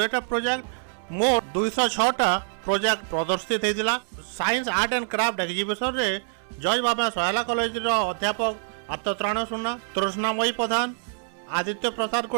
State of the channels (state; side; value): silent; left; 61 dB below the other